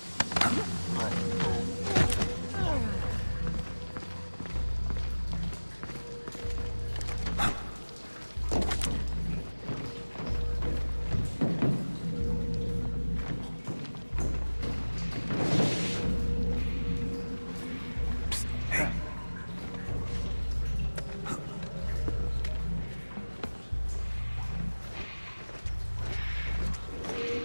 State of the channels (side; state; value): both; inverted; correlation -1.00